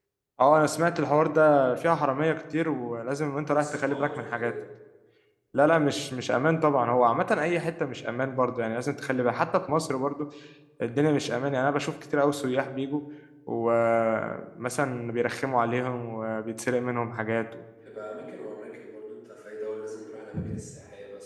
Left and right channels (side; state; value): both; identical; correlation 1.00